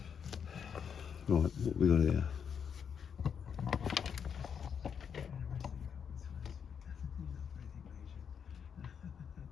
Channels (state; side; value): quieter; right; 7.3 dB